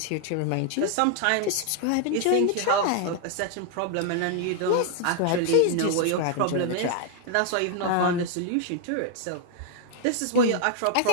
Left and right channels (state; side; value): different; both; correlation 0.00